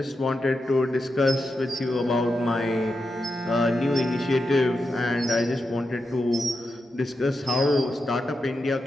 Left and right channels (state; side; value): normal; both; correlation 0.88